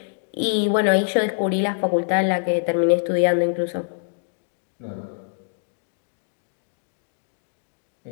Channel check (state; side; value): silent; right; digital silence